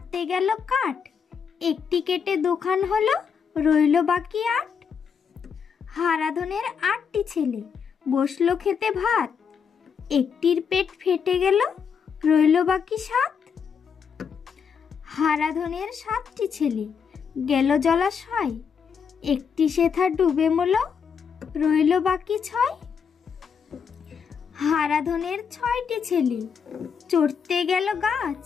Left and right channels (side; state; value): right; quieter; 6.6 dB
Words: গেল কাঠ, একটি কেটে দুখান হলো, রইল বাকি 8। হারাধনের 8টি ছেলে বসলো খেতে ভাত, একটির পেট ফেটে গেল, রইল বাকি 7। হারাধনের 7টি ছেলে গেল জলাশয়, একটি সেথা ডুবে মল, রইল বাকি 6। হারাধনের 6টি ছেলে চড়তে গেল গাছ,